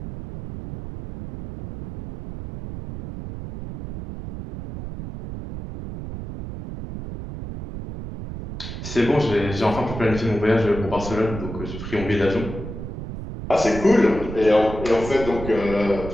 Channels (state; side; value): noise; right; rumble, 9 dB below the sound